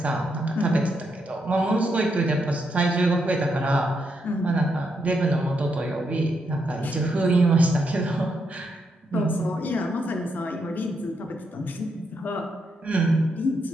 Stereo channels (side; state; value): both; normal; correlation 0.80